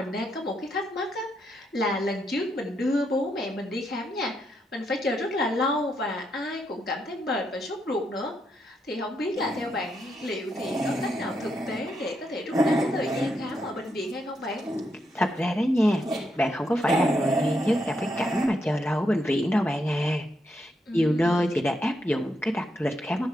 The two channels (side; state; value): both; normal; correlation 0.80